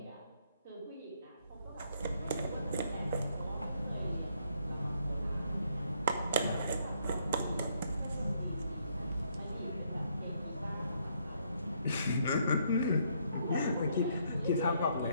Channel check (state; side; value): inverted; both; correlation -0.71